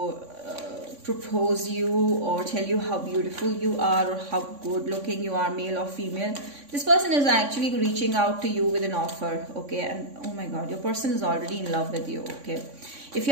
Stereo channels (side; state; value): left; late; 3.5 ms